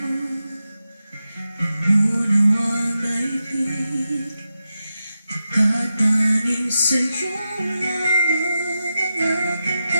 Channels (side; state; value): both; inverted; correlation -0.90